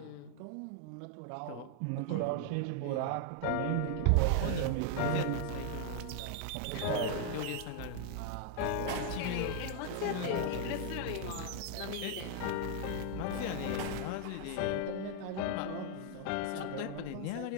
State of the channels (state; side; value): different; both; correlation 0.00